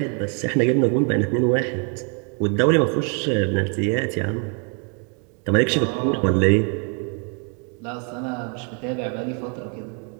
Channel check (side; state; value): left; quieter; 38.7 dB